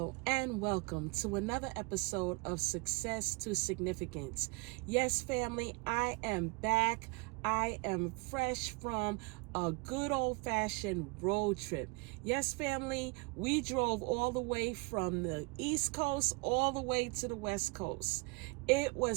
and welcome to another episode of Success to Significance. Yes, family, I am back. I am fresh from a good old-fashioned road trip. Yes, family, we drove all the way from the East Coast all the way to the West Coast. It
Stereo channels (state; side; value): quieter; left; 28.0 dB